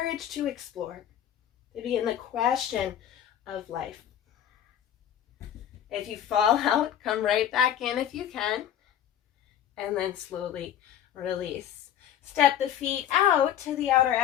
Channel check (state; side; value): quieter; right; 10.3 dB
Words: to explore. To begin the question of life. If you fall out, come right back in if you can. And then slowly release. Step the feet out to the outer